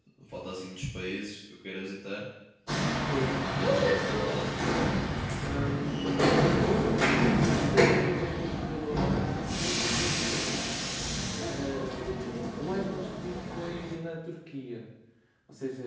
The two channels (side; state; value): both; identical; correlation 1.00